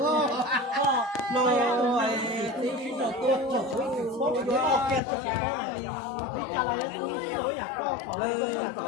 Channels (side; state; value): right; drops out; at 5.0 s